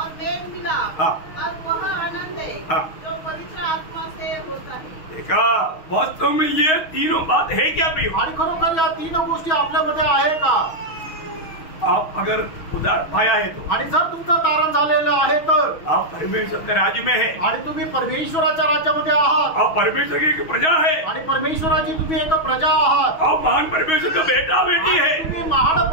मेल मिलाप हाँ। और वह आनंद है हाँ। जो पवित्र आत्मा से होता है। देखा, वास्तव में ये तीनों बात है क्या प्रियो? आणि खरोखर या तीन गोष्टी आपल्यामध्ये आहे का? आप अगर उधार पाया है तो आणि जर तुमचं तारण झालेलं आहे तर आप परमेश्वर के राज्य में है। आणि तुम्ही परमेश्वराच्या राज्यामध्ये आहात आप परमेश्वर की एक प्रजा है। आणि परमेश्वराची तुम्ही एक प्रजा आहात। आप महान परमेश्वर का बेटा बेटी है। आणि तुम्ही महान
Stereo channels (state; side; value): late; right; 6.3 ms